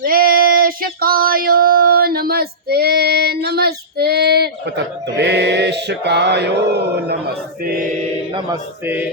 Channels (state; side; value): normal; both; correlation -0.18